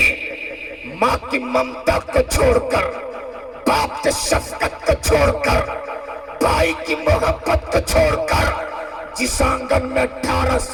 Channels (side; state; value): both; identical; correlation 1.00